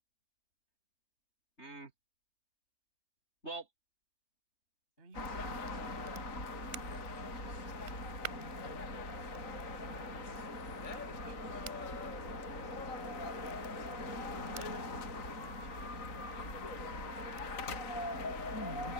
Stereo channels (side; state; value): right; late; 3.9 ms